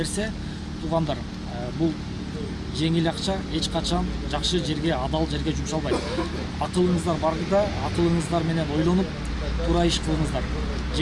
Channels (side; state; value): both; identical; correlation 1.00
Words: туугандар, бул жеңил акча эч качан жакшы жерге, адал жерге жумшалбайт. Акылыңыздар барда, акылыңыздар менен ойлонуп, туура иш кылыңыздар.